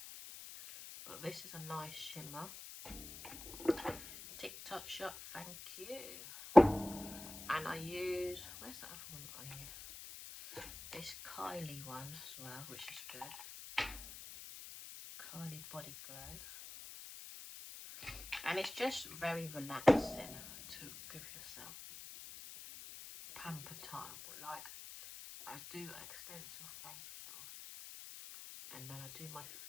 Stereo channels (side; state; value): left; noise; hiss, 12 dB below the sound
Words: But this is a nice shimmer. TikTok shop, thank you. And I use, where's the other one that I use? This Kylie one as well, which is good. Kylie Body Glow. And it's just very relaxing to give yourself pamper time. Like, I do extensive facials, and then I do my